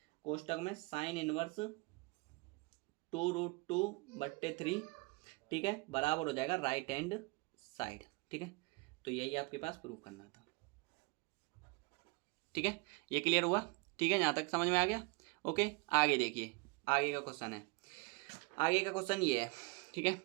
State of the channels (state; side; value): quieter; left; 28.0 dB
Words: कोष्टक में साइन इनवर्स 2√2/3, ठीक है, बराबर हो जाएगा राइट हैंड साइड, ठीक है। तो यही आपके पास प्रूव करना था, ठीक है, ये क्लियर हुआ, ठीक है, यहाँ तक समझ में आ गया। ओके आगे देखिए, आगे का क्वेश्चन है, आगे का क्वेश्चन ये है, ठीक है,